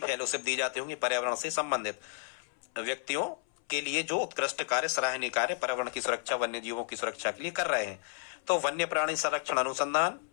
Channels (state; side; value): silent; right; 57 dB below the other